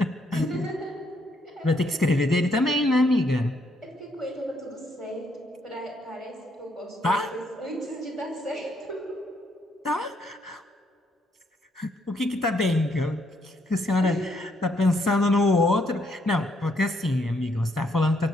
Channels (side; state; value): both; normal; correlation 0.72